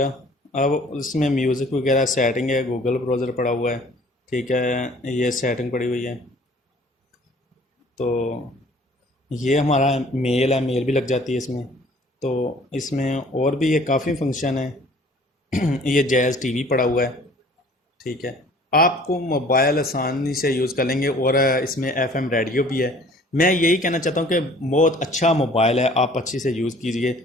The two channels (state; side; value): normal; both; correlation 0.53